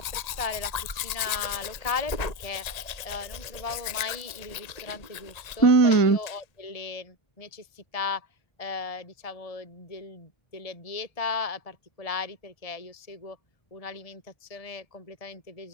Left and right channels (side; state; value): right; late; 1.8 ms